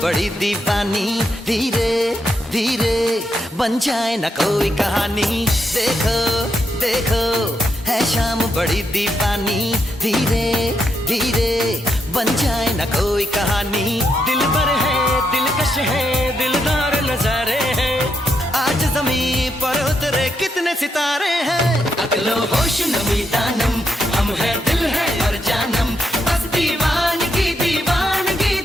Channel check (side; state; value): both; normal; correlation 0.80